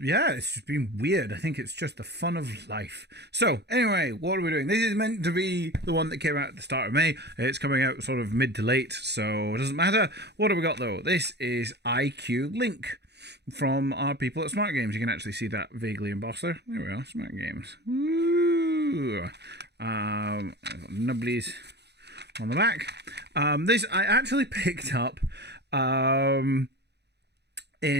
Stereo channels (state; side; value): late; left; 0.49 ms